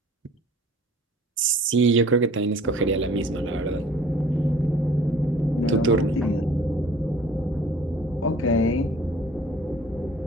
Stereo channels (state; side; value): normal; both; correlation 0.51